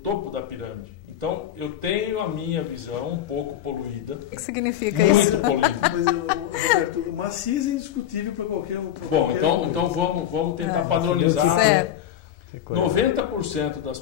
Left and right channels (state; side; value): quieter; right; 11.0 dB